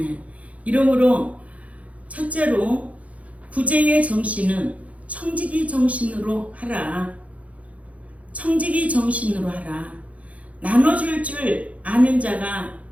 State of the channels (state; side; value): late; left; 0.067 ms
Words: 이러므로 첫째로 구제의 정신은 청지기 정신으로 하라. 청지기 정신으로 하라. 나눠줄 줄 아는 자가